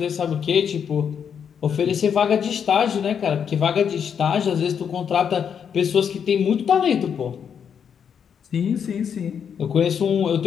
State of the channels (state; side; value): quieter; right; 7.6 dB